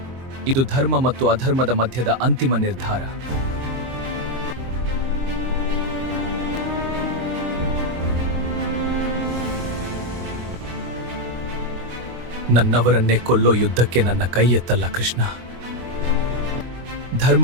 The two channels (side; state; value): left; late; 23 ms